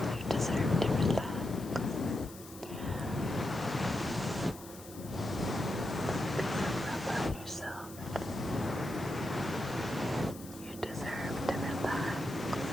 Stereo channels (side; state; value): left; noise; hiss, 17 dB below the sound